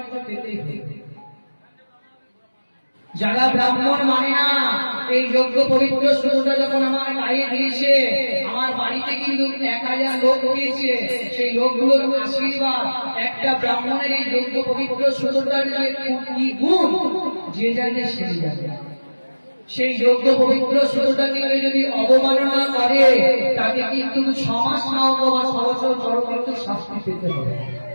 পেতেই হবে। যারা ব্রাহ্মণ মানে না, এই যোগ্য পবিত্র সুতোটা যখন আমার গায়ে দিয়েছে, আমার বাড়িতে কিন্তু 1000 লোক হয়েছে, সেই লোকগুলোর আশীর্বাদ একটা ব্রাহ্মণের এই যোগ্য পবিত্র সুতোটার যে কি গুণ, যে জানে সে জানে। সেই যোগ্য পবিত্র সুতোটাকে যদি অবমাননা করে, তাকে কিন্তু 6 মাস না অথবা 6 বছর পরবর্তী শাস্তি পেতে হবে।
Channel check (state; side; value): inverted; both; correlation -1.00